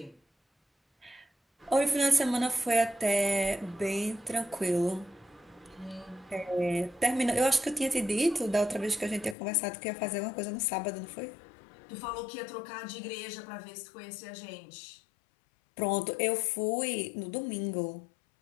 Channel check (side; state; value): right; drops out; at 9.3 s